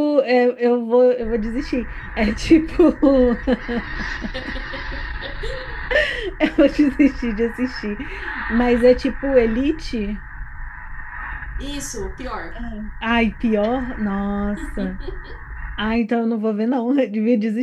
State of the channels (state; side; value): identical; both; correlation 1.00